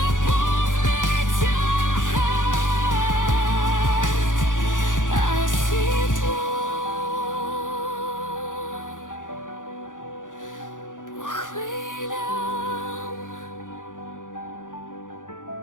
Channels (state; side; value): late; right; 0.88 ms